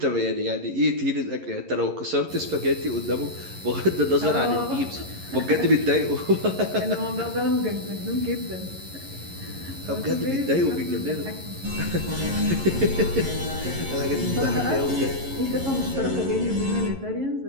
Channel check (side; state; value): left; late; 11 ms